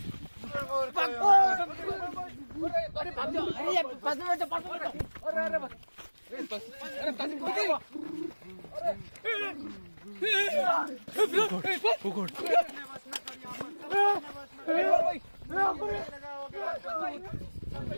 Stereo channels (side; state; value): both; inverted; correlation -1.00